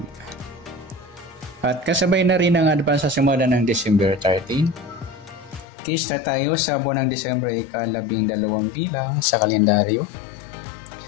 At kasabay na rin ang advance sa simula ng December 13. Case na tayo sa buwan ng December ika-12 bilang sa kalendaryo.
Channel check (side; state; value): right; drops out; at 5.7 s